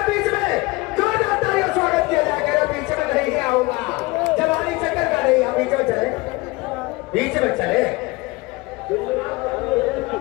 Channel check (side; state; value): right; quieter; 23.1 dB